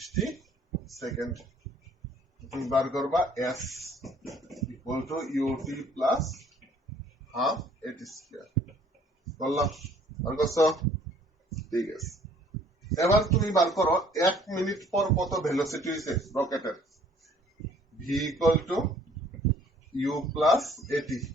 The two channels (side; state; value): both; normal; correlation 0.57